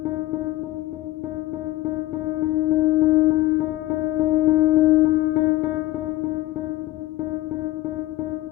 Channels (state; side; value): quieter; right; 16.3 dB